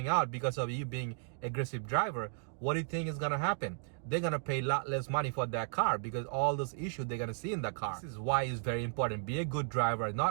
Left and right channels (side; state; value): left; silent; digital silence